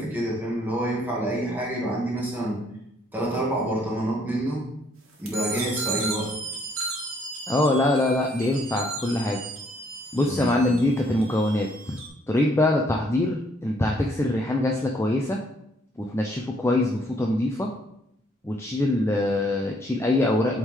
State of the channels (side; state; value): both; normal; correlation 0.66